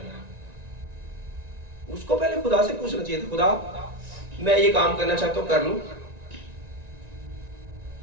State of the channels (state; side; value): late; left; 1.9 ms